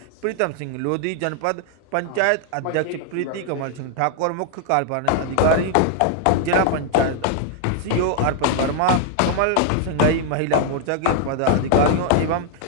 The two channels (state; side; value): different; both; correlation 0.00